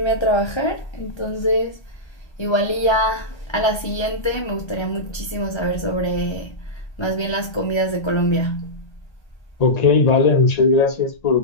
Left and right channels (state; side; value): late; right; 1.3 ms